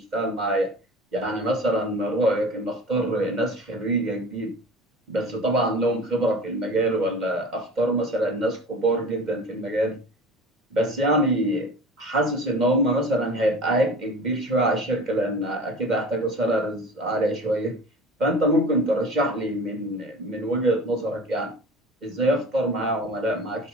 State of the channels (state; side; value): normal; both; correlation 0.37